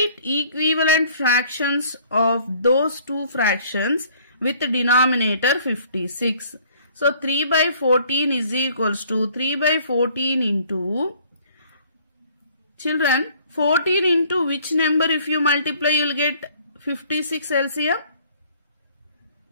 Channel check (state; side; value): inverted; both; correlation -0.57